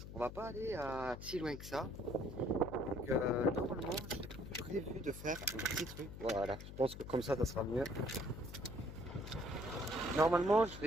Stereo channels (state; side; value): noise; left; hum, 11 dB below the sound